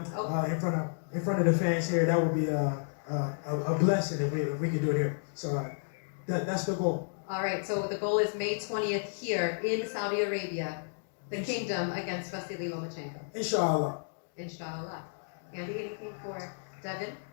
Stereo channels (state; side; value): silent; right; digital silence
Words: in front of the fans here. That would be a blessing if we could do it here. So that's the goal. All right, so the goal is May 20th here in Saudi Arabia, the kingdom against Vasily Lomachenko. Inshallah. Inshallah. Andy, anything for Devin?